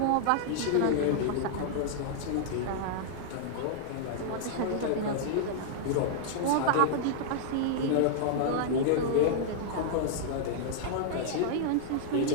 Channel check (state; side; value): different; both; correlation -0.01